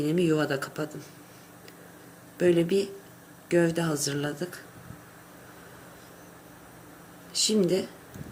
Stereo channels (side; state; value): both; identical; correlation 1.00